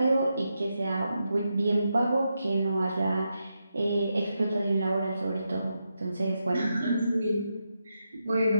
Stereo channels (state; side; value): inverted; both; correlation -0.85